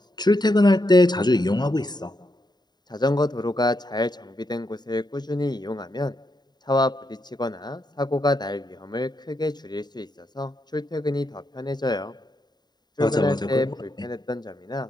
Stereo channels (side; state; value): right; late; 0.20 ms